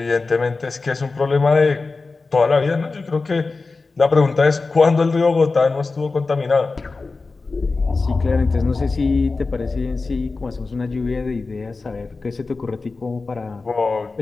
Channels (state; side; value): quieter; right; 3.9 dB